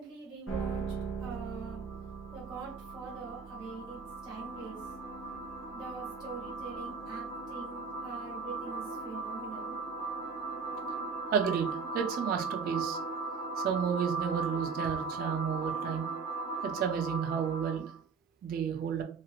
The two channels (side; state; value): left; quieter; 5.5 dB